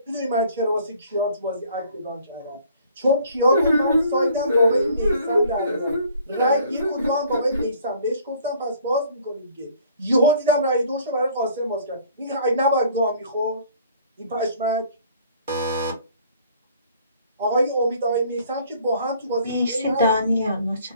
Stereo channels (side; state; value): both; inverted; correlation -0.55